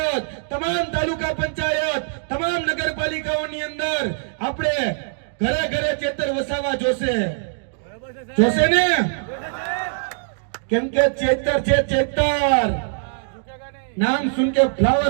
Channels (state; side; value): silent; left; digital silence